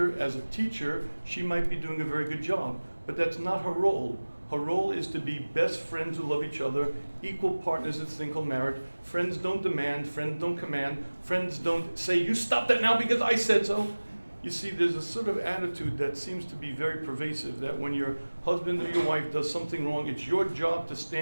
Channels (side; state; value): both; inverted; correlation -1.00